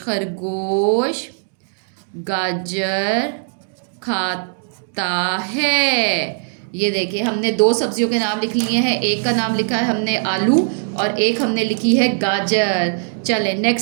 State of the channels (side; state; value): left; silent; digital silence